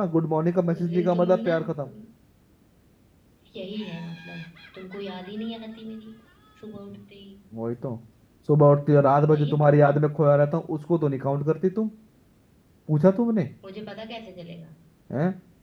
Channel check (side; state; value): both; identical; correlation 1.00